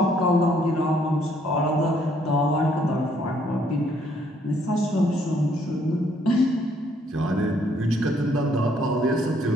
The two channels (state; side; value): normal; both; correlation 0.67